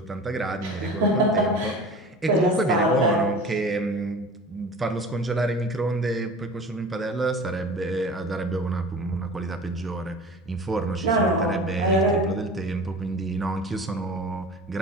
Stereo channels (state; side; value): normal; both; correlation 0.38